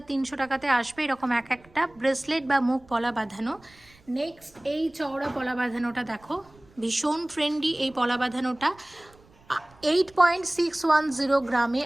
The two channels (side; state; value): right; noise; rumble, 28 dB below the sound